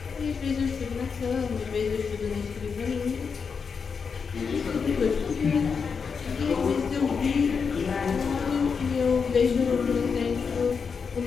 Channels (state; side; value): quieter; right; 5.7 dB